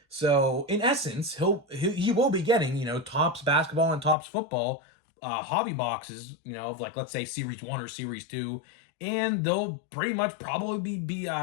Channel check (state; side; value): drops out; right; at 4.2 s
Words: So in essence, he will be getting Topps basketball and Topps football hobby boxes, of like, let's say Series 1 or Series 2, and they'll pretty much probably be